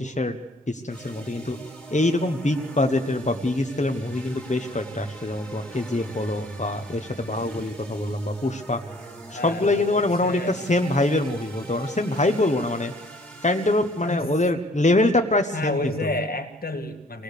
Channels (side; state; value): both; normal; correlation 0.58